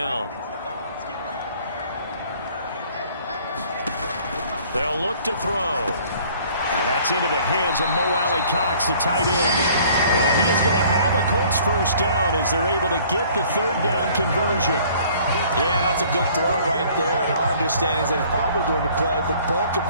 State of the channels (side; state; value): both; inverted; correlation -0.55